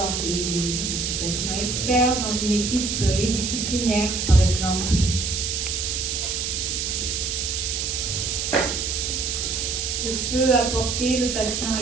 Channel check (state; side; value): noise; right; hiss, 1 dB below the sound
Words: et le bénéfice du patient expert dans une équipe pluridisciplinaire, par exemple? Que peut apporter le patient